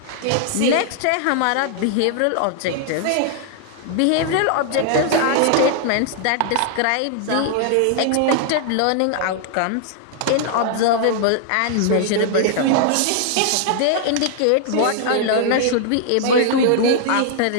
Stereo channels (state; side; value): different; both; correlation 0.00